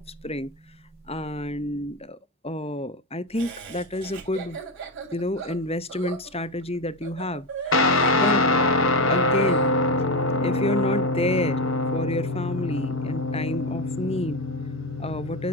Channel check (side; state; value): both; normal; correlation 0.15